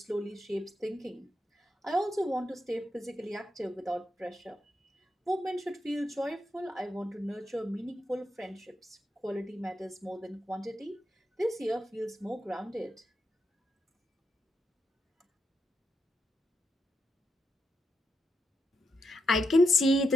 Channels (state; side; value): normal; both; correlation 0.84